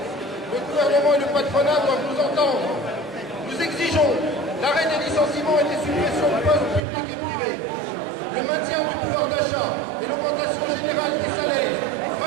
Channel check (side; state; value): left; drops out; at 6.8 s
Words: Le gouvernement et le patronat doivent nous entendre. Nous exigeons l'arrêt des licenciements et des suppressions de postes publics et privés, le maintien du pouvoir d'achat et l'augmentation générale des salaires,